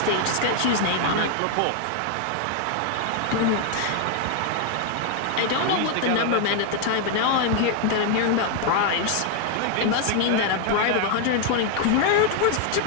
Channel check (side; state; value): both; different; correlation 0.00